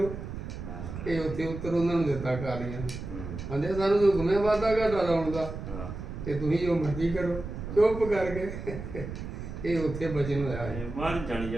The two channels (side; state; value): right; noise; rumble, 8 dB below the sound